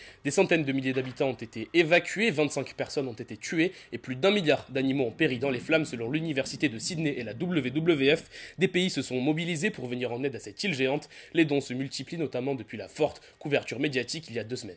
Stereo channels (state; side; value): identical; both; correlation 1.00